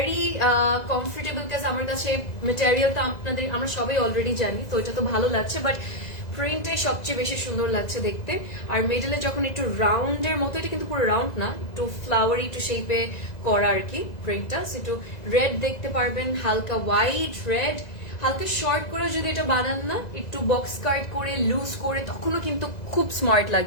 comfortable, because আমার কাছে মেটেরিয়ালটা আমরা সবাই অলরেডি জানি, তো এটা তো ভালো লাগছে, বাট প্রিন্টে সবচেয়ে বেশি সুন্দর লাগছে দেখতে। আর মিডলে যখন একটু রাউন্ডের মতো, এটা কিন্তু পুরো রাউন্ড না, একটু ফ্লাওয়ারি একটু শেপে করা আর কি প্রিন্টটা, একটু রেড দেখতে পারবেন, হালকা হোয়াইট রেড, হালকা শর্ট করে যদি এটা বানান না, একটু বক্স কাট করে লুজ করে, তখনও কিন্তু খুব স্মার্ট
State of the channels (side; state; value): right; late; 2.0 ms